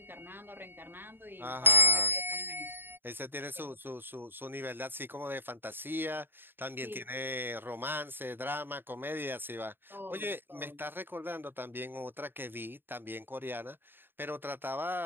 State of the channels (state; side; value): late; left; 0.099 ms